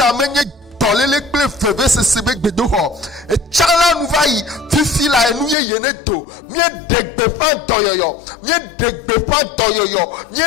menye dolele kple veve sese be gbedo ho e chala nu vai fifi la enu ye yeneto mie degbe fa doyoyo mie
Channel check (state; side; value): drops out; right; at 5.6 s